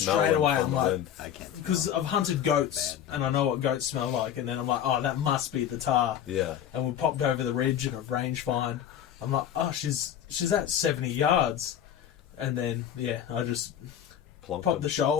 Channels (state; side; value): quieter; right; 9.9 dB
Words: straight them away. from I'm the like, wind. because I've hunted goats and I know what goats smell like, and then I'm like, oh, that must be the Tahr. Yeah. And we popped over the ridge and a range find. I'm like, oh, she's at 70 yards. And then, I just popped the